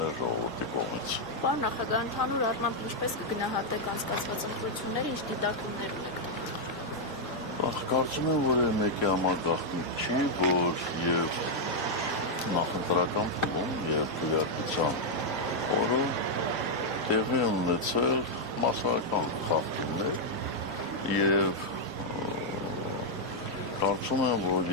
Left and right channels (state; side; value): normal; both; correlation -0.03